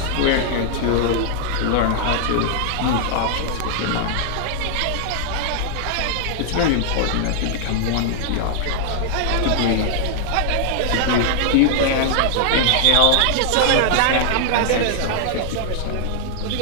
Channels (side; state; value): both; different; correlation -0.01